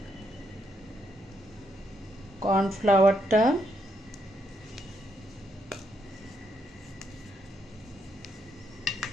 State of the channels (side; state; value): both; normal; correlation 0.77